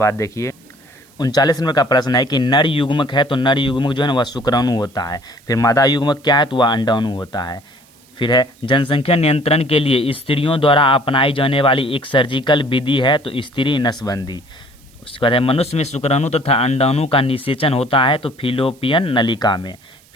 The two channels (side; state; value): right; noise; hiss, 29 dB below the sound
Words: देखिए 39 नंबर का प्रश्न है कि नर युग्मक है, तो नर युग्मक जो है ना वह शुक्राणु होता है। फिर मादा युग्मक क्या है, तो वह अंडाणु होता है। फिर है जनसंख्या नियंत्रण के लिए स्त्रियों द्वारा अपनाई जाने वाली एक सर्जिकल विधि है, तो स्त्री नसबंदी। उसके बाद है मनुष्य में शुक्राणु तथा अंडाणु का निषेचन होता है, तो फिलोपियन नलिका में।